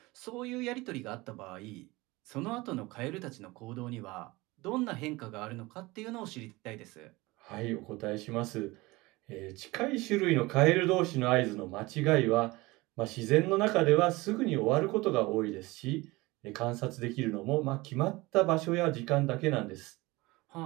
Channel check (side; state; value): left; quieter; 21.7 dB